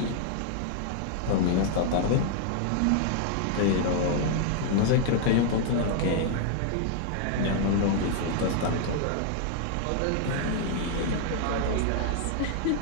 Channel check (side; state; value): both; different; correlation 0.00